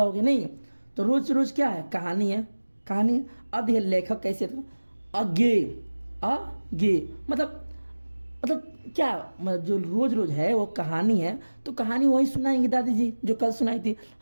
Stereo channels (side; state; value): both; inverted; correlation -1.00